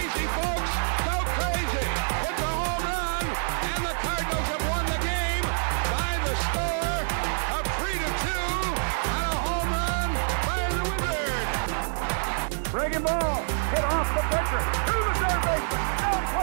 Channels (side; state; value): left; silent; digital silence